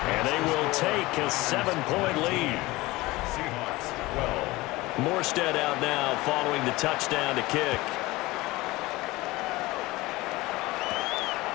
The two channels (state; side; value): quieter; right; 20.3 dB